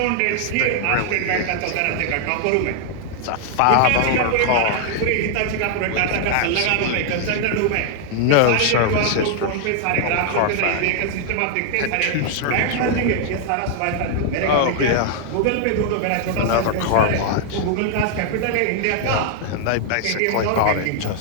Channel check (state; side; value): different; both; correlation 0.00